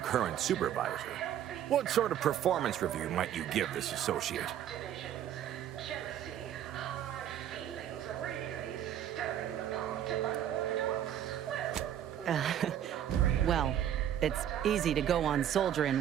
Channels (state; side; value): quieter; left; 10.6 dB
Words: supervisor. What sort of performance review might you give this associate? Well, it's easy to go on